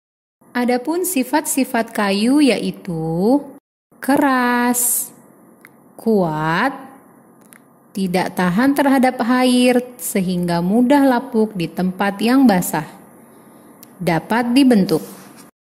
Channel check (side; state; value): both; identical; correlation 1.00